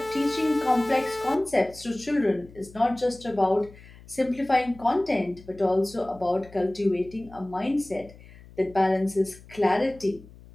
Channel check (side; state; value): left; noise; hum, 21 dB below the sound